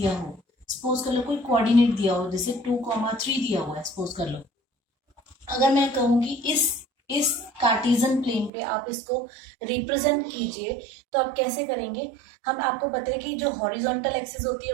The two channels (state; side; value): drops out; left; at 8.5 s